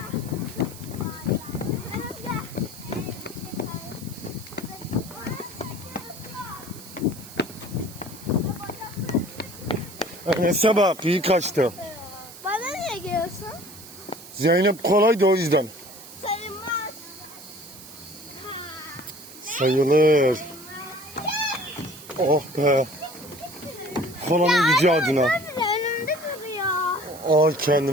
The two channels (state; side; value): noise; right; hiss, 17 dB below the sound